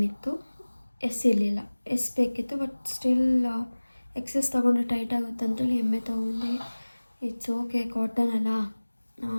ಇತ್ತು, ಎಸ್ ಇರಲಿಲ್ಲ. ಎಸ್ ಬೇಕಿತ್ತು ಬಟ್ ಸ್ಟಿಲ್ ಎಕ್ಸೆಸ್ ತೊಗೊಂಡ್ರೆ ಟೈಟ್ ಆಗುತ್ತೆ ಅಂತೇಳಿ ಎಮ್ಮೆ ತೊಗೊಂಡೆ. ಇಟ್ಸ್ ಓಕೆ, ಕಾಟನ್ ಅಲ್ಲ,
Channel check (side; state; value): both; inverted; correlation -1.00